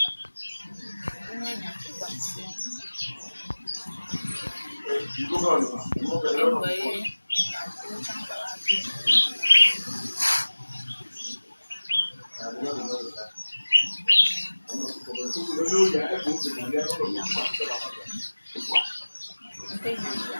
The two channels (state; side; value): inverted; both; correlation -1.00